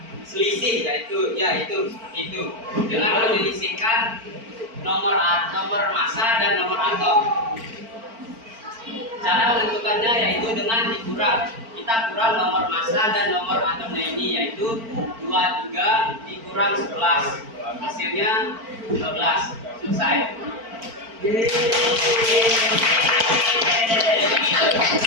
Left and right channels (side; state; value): left; late; 4.4 ms